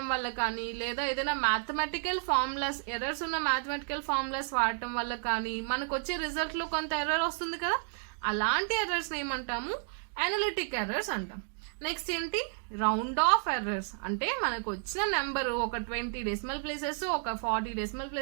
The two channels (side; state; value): left; silent; 57 dB below the other